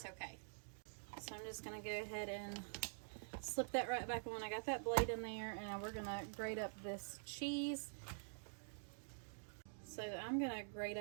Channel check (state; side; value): silent; left; digital silence